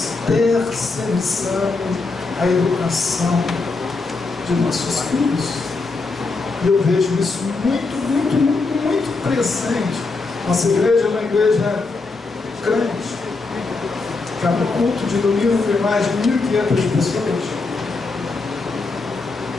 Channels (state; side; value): quieter; right; 3.9 dB